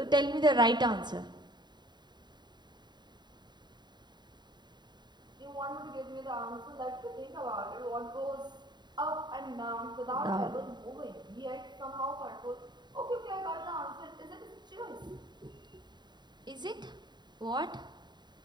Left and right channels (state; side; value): late; left; 0.21 ms